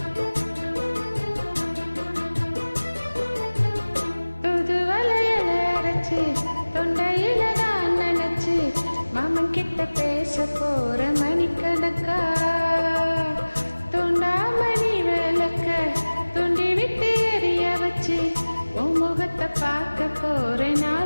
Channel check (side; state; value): both; inverted; correlation -1.00